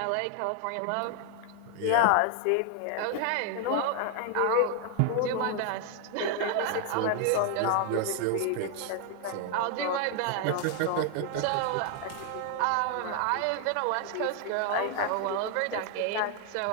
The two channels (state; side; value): different; both; correlation 0.00